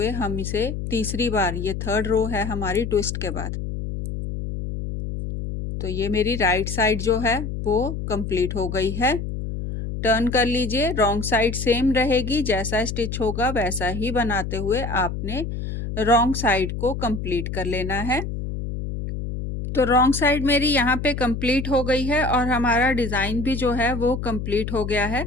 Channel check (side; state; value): left; noise; hum, 5 dB below the sound